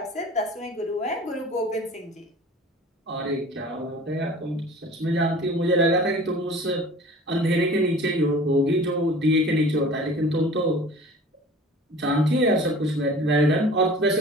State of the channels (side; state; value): both; normal; correlation 0.44